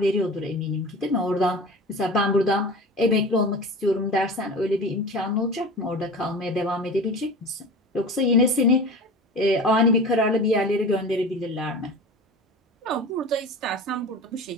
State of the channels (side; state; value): both; normal; correlation 0.34